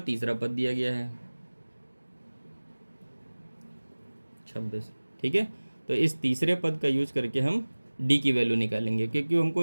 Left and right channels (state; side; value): inverted; both; correlation -1.00